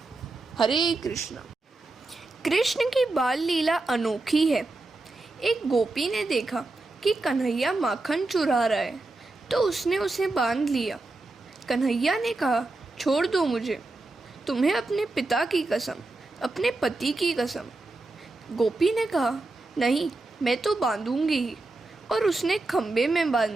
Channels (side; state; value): left; quieter; 3.1 dB